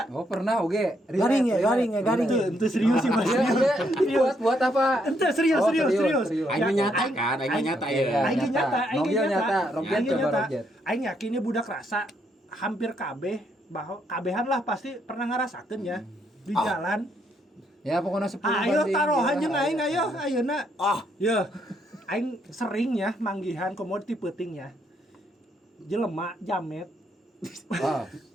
Oh, pernah oge. Garing ya. Ente serius sih mas. Buat apa? Ente serius. Aing nyata kan, aing nyata ya. Aing nyata. Roget coba roget. Aing yakin budak rasa hampir kabeh bahwa kabehan lah pasti pernah ngarasakeun ya di jalan. Ya pokoknya 10 Ayo taruhan jeung aing ayeuna. Ya. Aing sering ya manggihan komoditi peuting ya. Jelema jamet.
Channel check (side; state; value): both; normal; correlation 0.74